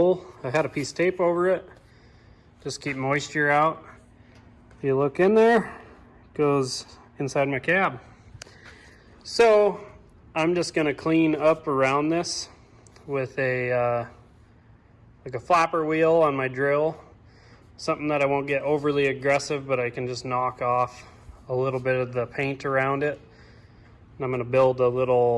I had a piece of tape over it, just keep moisture out. If you look in there, it goes inside my cab. So I'm just going to clean up around this with a like a flapper wheel on my drill. Something that I won't get overly aggressive, but I can just knock off a little bit of the paint around it. And I'm going to build a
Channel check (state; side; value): identical; both; correlation 1.00